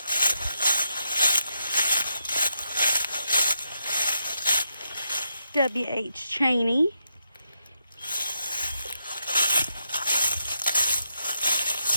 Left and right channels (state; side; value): inverted; both; correlation -0.83